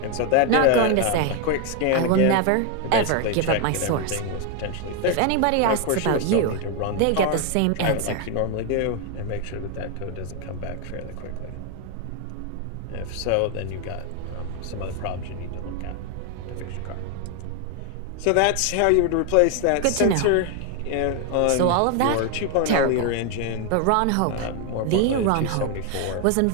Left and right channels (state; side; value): different; both; correlation 0.01